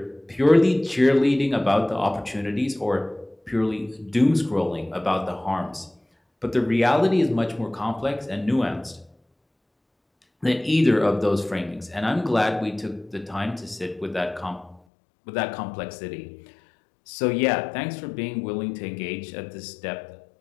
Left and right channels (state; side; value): drops out; right; at 14.8 s